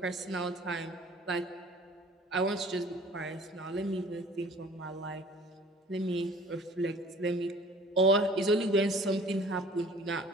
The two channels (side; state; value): both; normal; correlation 0.50